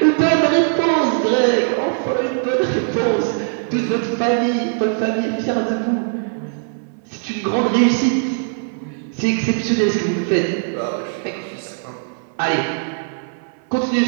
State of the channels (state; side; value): silent; left; 59 dB below the other